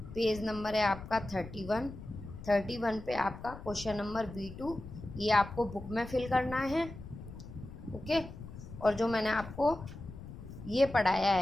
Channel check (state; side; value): noise; left; rumble, 13 dB below the sound